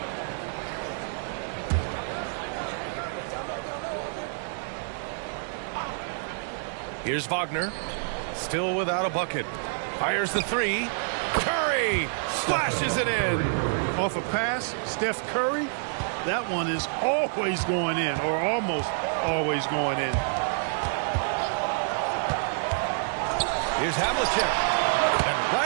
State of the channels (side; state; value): left; silent; digital silence